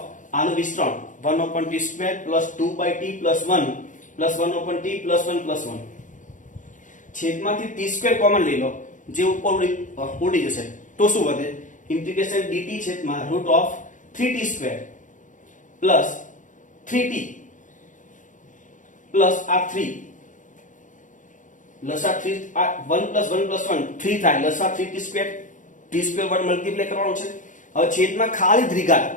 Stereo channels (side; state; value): right; late; 0.37 ms